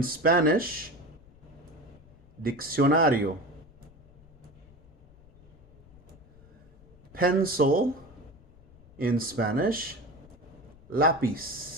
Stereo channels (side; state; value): left; noise; rumble, 25 dB below the sound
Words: Spanish, diccionario. Pencil in Spanish,